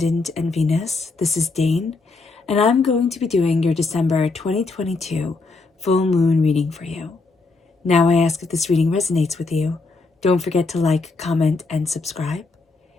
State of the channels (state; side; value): quieter; right; 3.7 dB